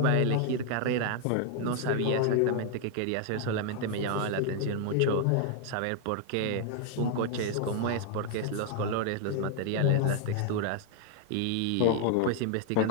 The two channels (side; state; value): both; different; correlation 0.00